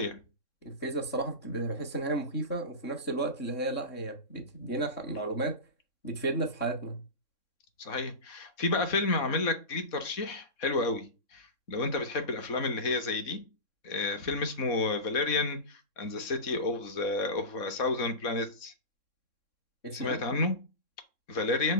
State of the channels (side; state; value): right; late; 3.6 ms